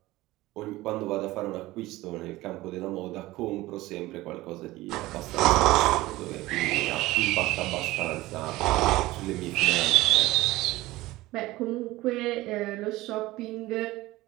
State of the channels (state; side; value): quieter; left; 18.4 dB